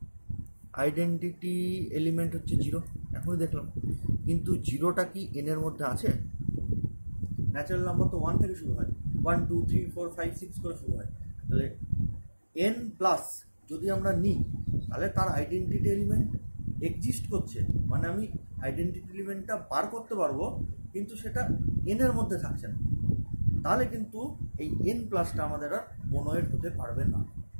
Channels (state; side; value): inverted; both; correlation -1.00